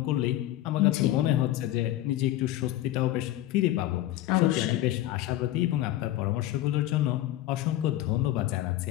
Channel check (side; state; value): right; quieter; 14.4 dB